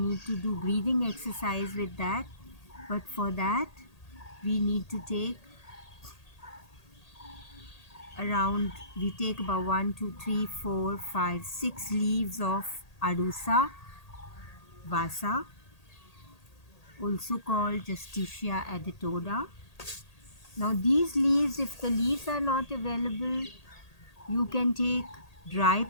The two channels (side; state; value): right; late; 1.8 ms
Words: to do breathing exercise with that. But for that we need to take we take about 1, 2, 3, 4, 5, 6 leaves of Arusa Vasa, also called Justicia editoda. Now these leaves, if the leaves are not available, you can take dry